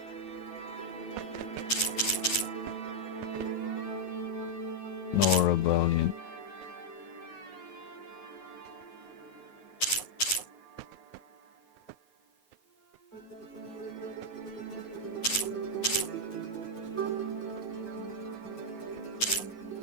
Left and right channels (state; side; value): late; right; 9.4 ms